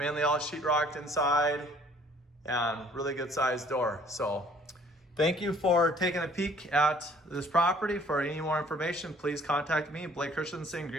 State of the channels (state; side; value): normal; both; correlation 0.57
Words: all sheetrocked inside, and really good size door. So thank you for taking a peek at this property. For any more information, please contact me, Blake Christensen,